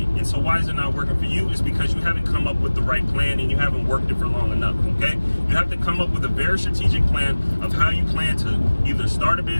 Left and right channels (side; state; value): both; inverted; correlation -1.00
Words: And so why is it not working for you? It's because you haven't come up with the right plan and you haven't worked it for long enough, okay? You have to come up with a very strategic plan of how you plan to either start a